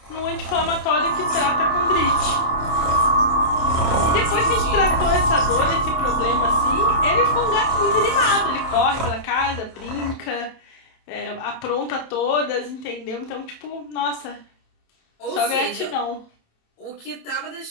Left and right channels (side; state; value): right; late; 27 ms